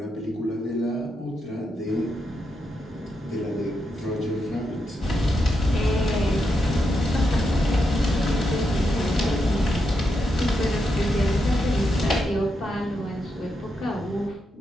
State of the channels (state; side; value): normal; both; correlation 0.84